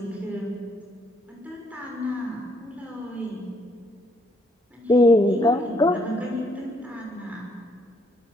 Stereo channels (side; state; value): both; normal; correlation 0.69